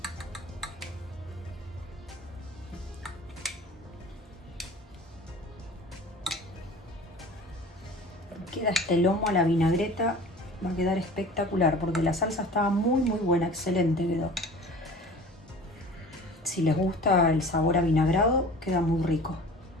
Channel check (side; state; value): both; normal; correlation 0.42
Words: Queda este lomo a la vinagreta, va a quedar espectacular porque la salsa estaba muy buena, excelente quedó. Si les gusta el sabor avinagrado, queda muy rico.